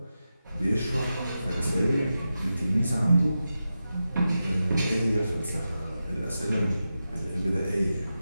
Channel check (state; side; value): inverted; both; correlation -0.91